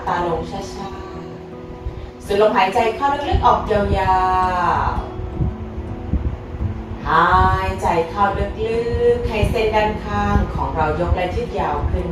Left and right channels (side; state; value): both; identical; correlation 1.00